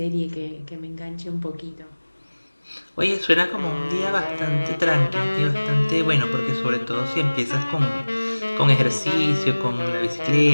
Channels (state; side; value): inverted; both; correlation -1.00